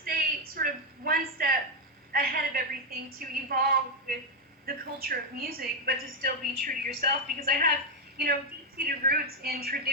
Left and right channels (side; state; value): both; normal; correlation 0.03